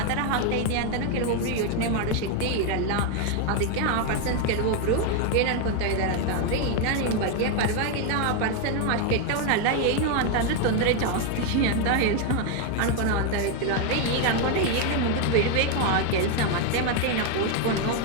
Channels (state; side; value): different; both; correlation 0.01